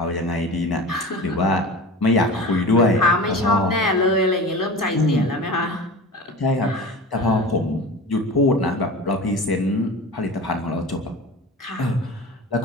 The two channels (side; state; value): both; normal; correlation 0.34